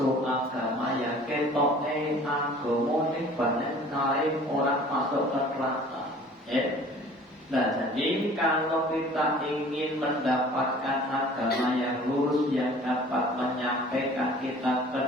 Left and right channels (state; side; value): normal; both; correlation 0.48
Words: agama yang ketoknya agama ini banyak sekali orang masuk ke neraka. Nah, jadi kalau kita ingin mendapatkan agama yang lurus, yang dapat menyampaikan kita ke